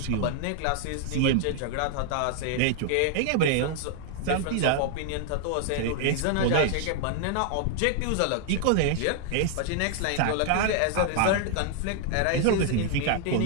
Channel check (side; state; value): both; different; correlation 0.00